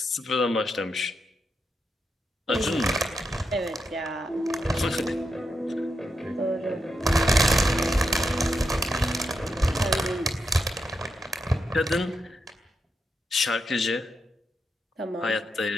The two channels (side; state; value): both; normal; correlation 0.84